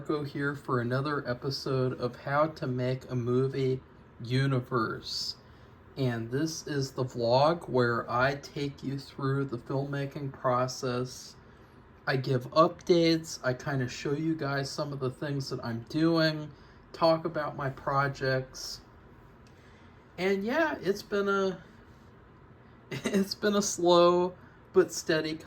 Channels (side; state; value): both; identical; correlation 1.00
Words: here for another episode of How to Make a Movie Universe. And this is the vlog where I take you through the filmmaking process. I give updates, I kind of show you guys some of the things that I'm doing, talk about my projects. And yeah, it's been a slow but steady